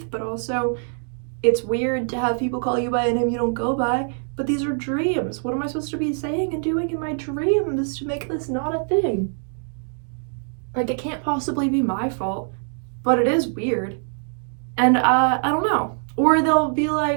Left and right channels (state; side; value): silent; left; 63 dB below the other